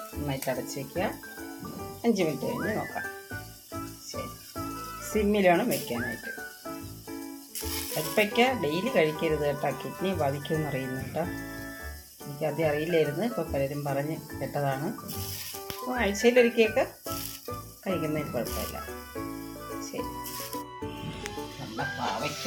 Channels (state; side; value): identical; both; correlation 1.00